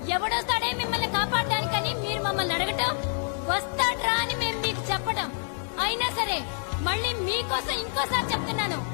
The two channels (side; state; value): right; silent; 60 dB below the other